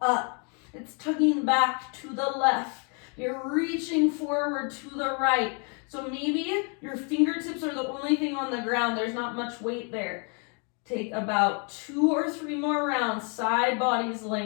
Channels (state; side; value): quieter; right; 37.1 dB